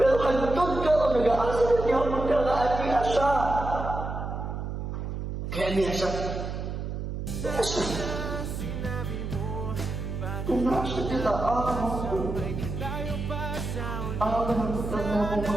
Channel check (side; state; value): right; noise; hum, 5 dB below the sound